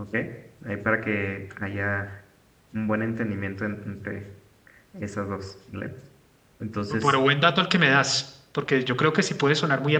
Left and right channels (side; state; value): both; identical; correlation 1.00